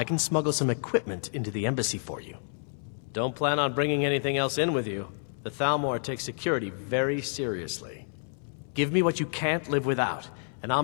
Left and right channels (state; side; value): silent; right; 59 dB below the other